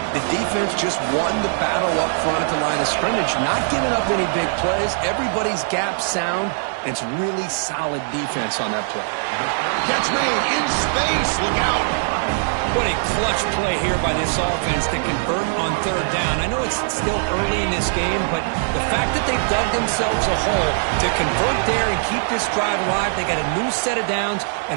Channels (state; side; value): silent; left; digital silence